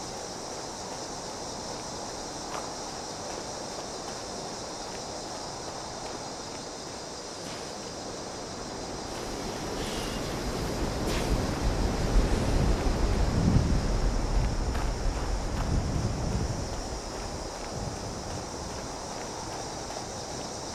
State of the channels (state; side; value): identical; both; correlation 1.00